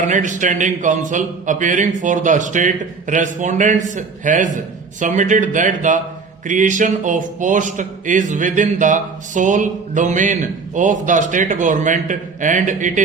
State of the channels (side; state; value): left; quieter; 4.8 dB